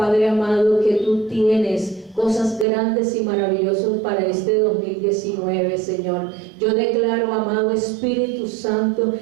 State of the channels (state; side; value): drops out; left; at 2.7 s